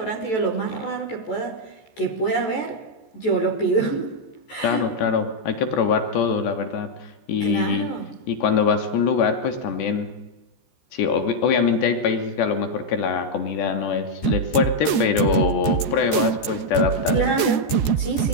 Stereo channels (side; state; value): right; late; 14 ms